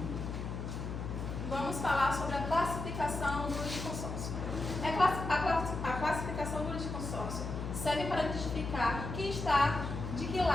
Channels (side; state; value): left; noise; hum, 5 dB below the sound